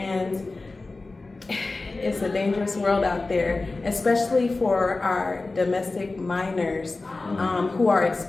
it's a dangerous world out there, especially for our domestic minors who are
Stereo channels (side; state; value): right; quieter; 3.4 dB